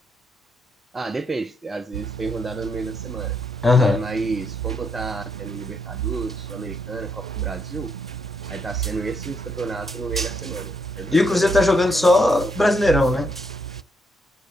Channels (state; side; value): normal; both; correlation 0.76